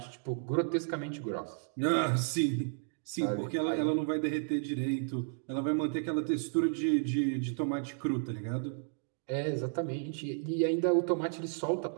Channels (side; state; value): left; silent; digital silence